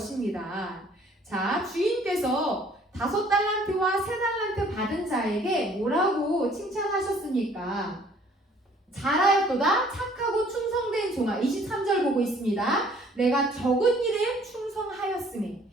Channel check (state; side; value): normal; both; correlation 0.57